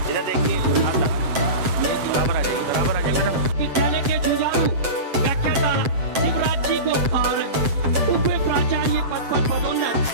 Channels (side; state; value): left; late; 7.6 ms